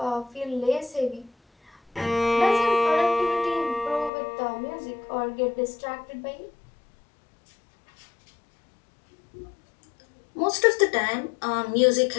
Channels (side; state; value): right; drops out; at 4.1 s